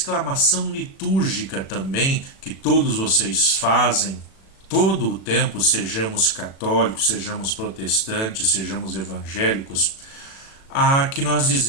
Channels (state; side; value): late; right; 36 ms